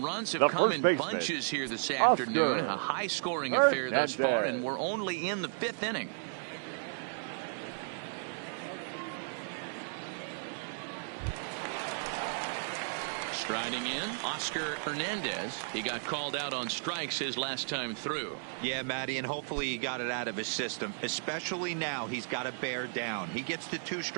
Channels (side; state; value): left; silent; digital silence